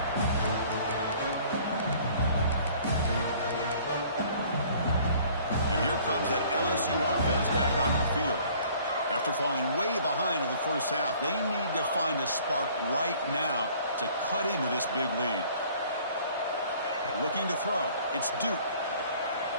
And here comes that LSU offense back onto the field. After falling way behind in the first half, they need to find a spark right now to cut into this big lead. Looking to throw. It's Duke.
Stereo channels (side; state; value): both; inverted; correlation -0.54